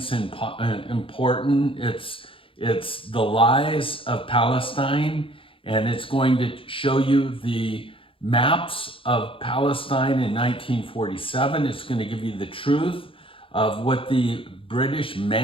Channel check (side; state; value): right; late; 0.26 ms